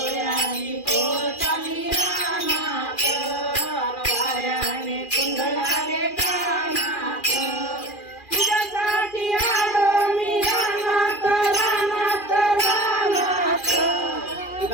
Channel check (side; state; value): right; late; 2.4 ms